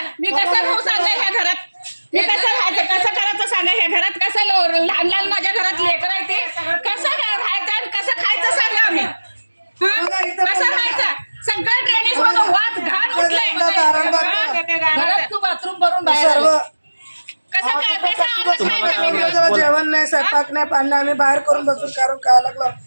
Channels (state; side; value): inverted; both; correlation -1.00